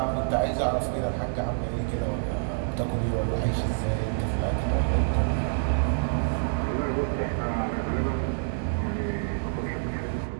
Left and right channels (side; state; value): left; silent; digital silence